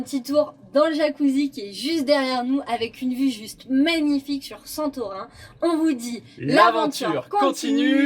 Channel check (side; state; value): both; identical; correlation 1.00